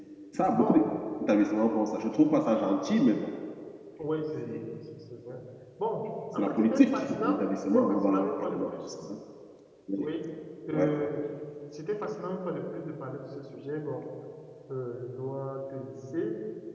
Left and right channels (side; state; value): both; identical; correlation 1.00